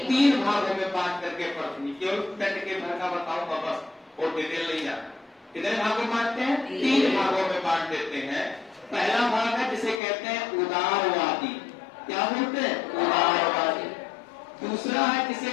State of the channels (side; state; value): right; drops out; at 10.0 s